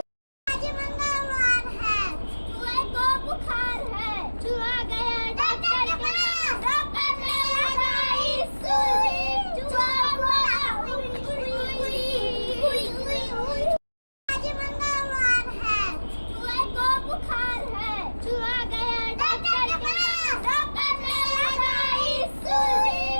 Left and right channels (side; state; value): both; inverted; correlation -1.00